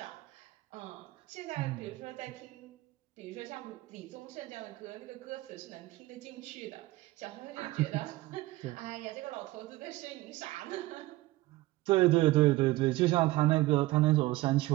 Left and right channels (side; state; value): left; quieter; 18.4 dB